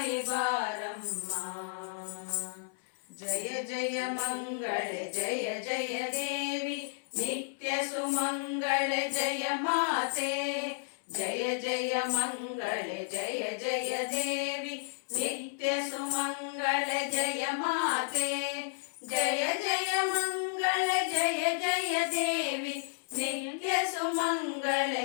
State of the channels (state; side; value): silent; right; digital silence